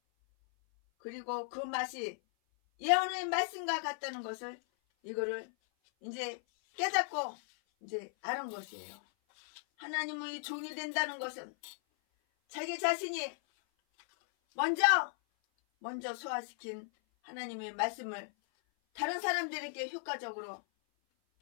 그리고 그 맛이 예언의 말씀과 같다는 것을 이거를 이제 깨닫고 이제 아는 것이에요. 하나님의 종이 된다는 것은 자기 자신이 먼저 소화시킨 하나님의 말씀을 다른 사람들에게 효과적으로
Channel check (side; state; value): right; silent; 53 dB below the other